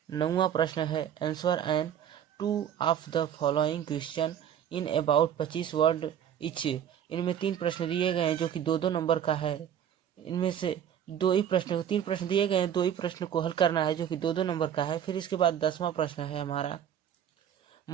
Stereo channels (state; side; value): quieter; left; 9.4 dB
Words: है answer and 2 of the following question in about 25 word etch. इनमें 3 प्रश्न दिए गए हैं, जो कि 2-2 नंबर का है। इनमें से 3 प्रश्न दिए गए हैं, 2 ही प्रश्न को हल करना है, जो कि 2-2 नंबर का है। फिर इसके बाद 10वां प्रश्न है हमारा